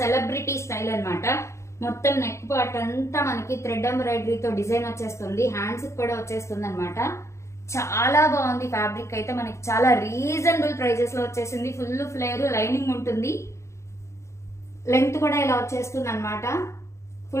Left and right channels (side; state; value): right; late; 0.14 ms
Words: స్టైల్ అన్నమాట. మొత్తం నెక్ పార్ట్ అంతా మనకి థ్రెడ్ ఎంబ్రాయిడరీతో డిజైన్ వచ్చేస్తుంది. హ్యాండ్స్ కూడా వచ్చేస్తుంది అనమాట. చాలా బాగుంది. ఫ్యాబ్రిక్ అయితే మనకి చాలా రీజనబుల్ ప్రైజెస్ లో వచ్చేసింది. ఫుల్ ఫ్లేర్, లైనింగ్ ఉంటుంది. లెంగ్త్ కూడా ఇలా వచ్చేస్తుంది అనమాట.